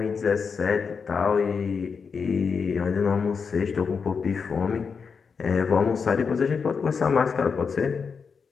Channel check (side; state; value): right; quieter; 5.7 dB